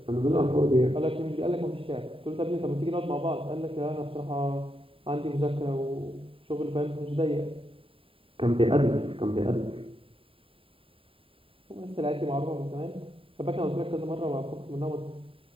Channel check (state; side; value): late; left; 0.27 ms